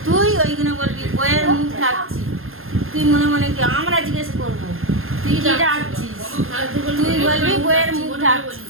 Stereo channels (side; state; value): left; late; 0.60 ms